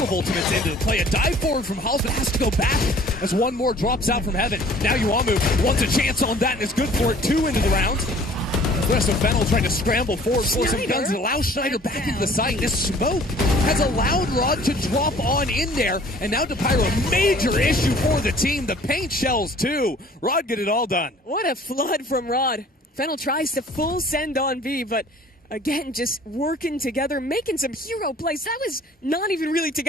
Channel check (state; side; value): normal; both; correlation 0.51